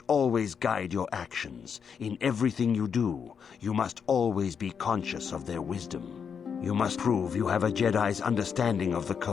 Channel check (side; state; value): right; quieter; 6.8 dB